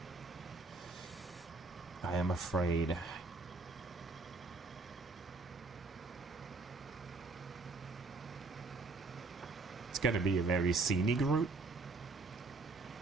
I am afraid. It's gonna be a very scenic route,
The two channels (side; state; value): left; quieter; 3.5 dB